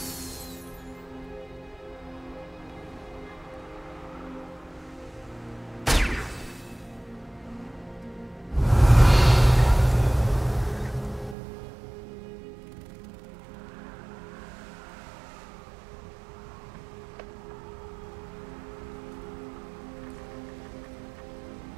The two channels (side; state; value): left; drops out; at 11.4 s